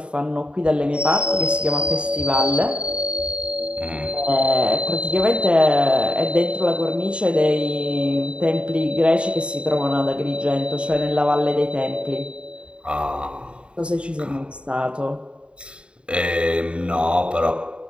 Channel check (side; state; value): left; late; 0.056 ms